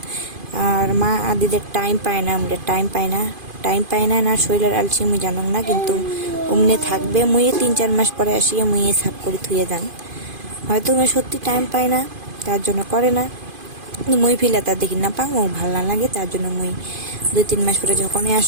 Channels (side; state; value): left; late; 2.5 ms